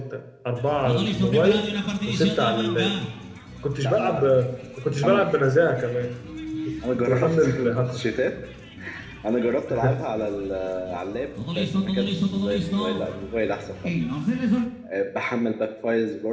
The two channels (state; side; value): identical; both; correlation 1.00